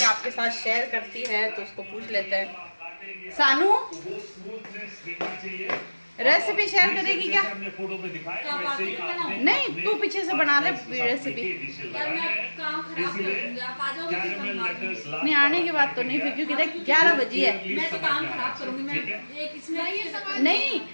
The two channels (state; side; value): inverted; both; correlation -1.00